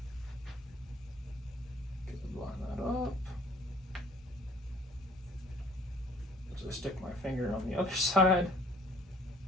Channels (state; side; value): normal; both; correlation 0.55